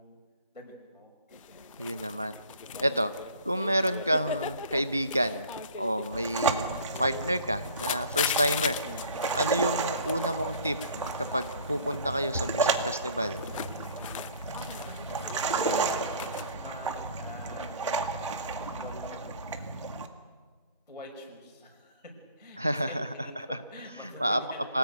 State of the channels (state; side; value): inverted; both; correlation -0.50